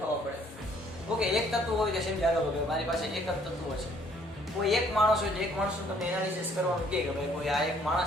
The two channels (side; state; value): both; normal; correlation 0.62